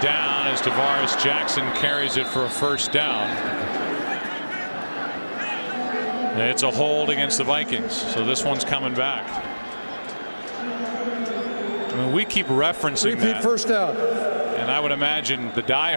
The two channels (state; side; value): inverted; both; correlation -1.00